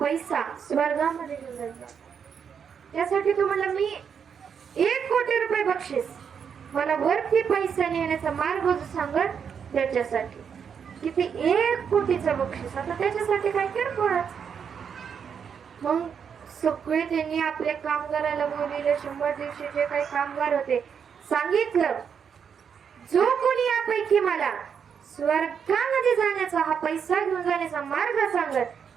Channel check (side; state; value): left; quieter; 7.1 dB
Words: स्वर्गामध्ये घेऊन जायचा. त्यासाठी तो म्हणला मी 1 कोटी रुपये बक्षीस, मला वरती पैसा नेण्याचा मार्ग सांगत त्याच्यासाठी. किती 1 कोटीचं बक्षीस. आता त्याच्यासाठी काय किरकोळच. मग सगळे त्यांनी आपल्या कामगाराला बोलले, 100 दिवशी जे काही कामगार होते सांगितलं, जो कोणी यापैकी मला स्वर्गामध्ये जाण्याचा हा पैसा घेऊन जाण्याचा मार्ग सांगत